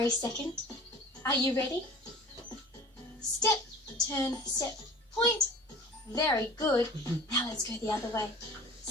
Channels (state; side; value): normal; both; correlation 0.41